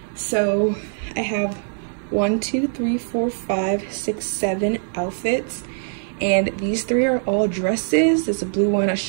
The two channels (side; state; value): left; silent; digital silence